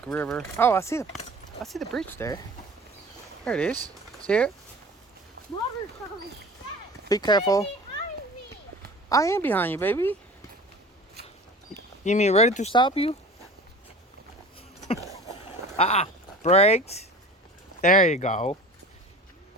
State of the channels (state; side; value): normal; both; correlation 0.40